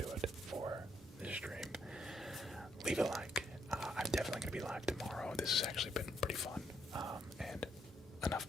it for this stream. Leave a like. I'm definitely gonna be live tomorrow. This has actually been pretty fun, and enough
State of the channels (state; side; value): normal; both; correlation 0.75